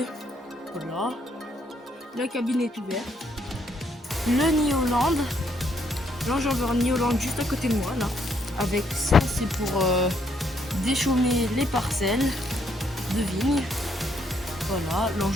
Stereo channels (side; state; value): both; normal; correlation 0.72